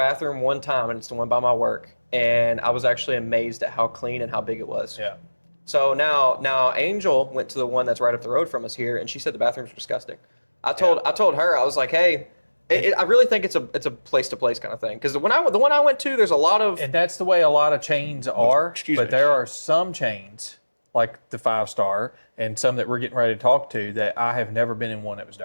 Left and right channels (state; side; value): inverted; both; correlation -1.00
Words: one time, and it's the one by my work, and I was actually amazed at how clean and how big it was. Yeah. So now Angel went to the one that's right up the road from us here, and she said the bathrooms were disgusting. I told her, I was like, hey, I really think it's a place to place kind of thing, because the one I went to, there's a lot of, and that's the way a lot of chains are. But there are some chains like the 5-star and some that we're getting ready to talk to that I have never been in one that was